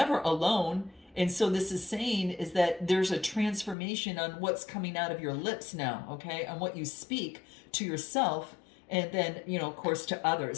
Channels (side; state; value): right; drops out; at 3.8 s